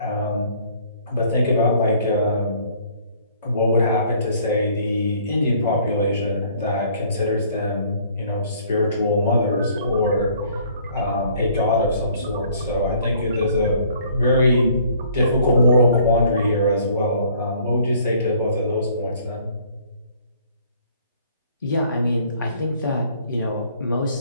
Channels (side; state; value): both; inverted; correlation -0.58